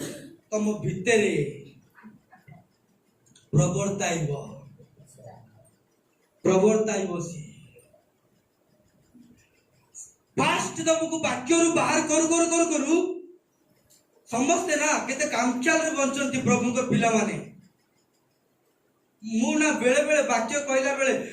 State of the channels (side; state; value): both; identical; correlation 1.00